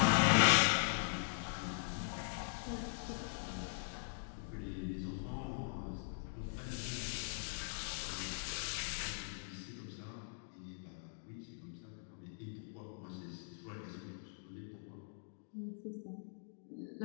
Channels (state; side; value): silent; right; digital silence